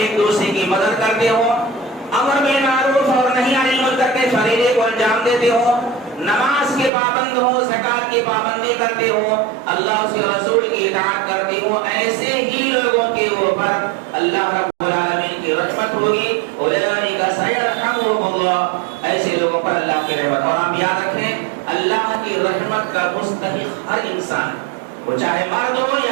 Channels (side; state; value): left; drops out; at 6.9 s